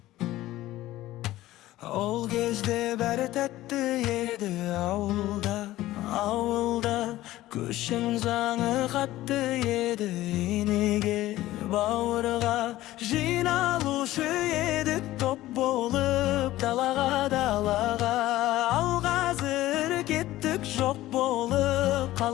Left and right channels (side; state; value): right; quieter; 15.9 dB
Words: Ол кезде бәрі тәтті еді ауылда Көшің заңы қатты еді енеге бауырға Жиналушы едік топ болып далаға Ал қазір кеттік жоқ болып